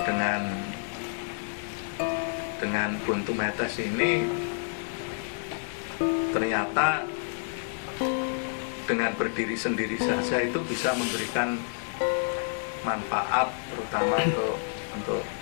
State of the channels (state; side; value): silent; right; digital silence